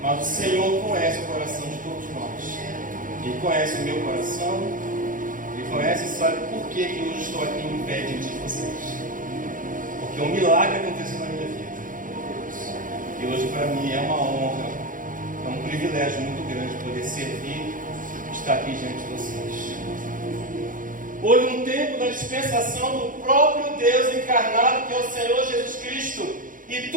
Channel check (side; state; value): left; late; 0.39 ms